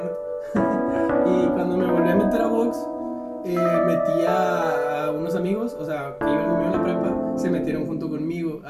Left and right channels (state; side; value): identical; both; correlation 1.00